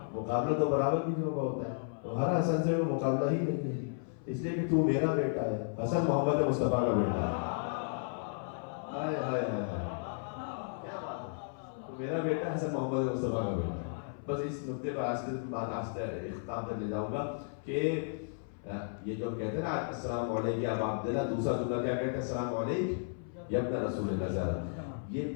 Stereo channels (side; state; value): right; silent; 55 dB below the other